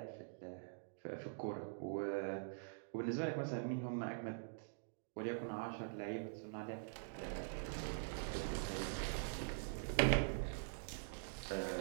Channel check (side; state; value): left; silent; digital silence